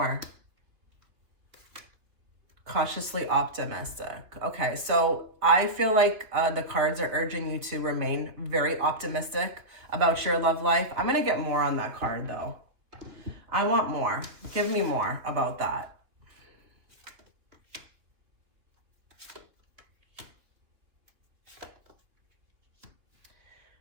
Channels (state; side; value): late; left; 3.1 ms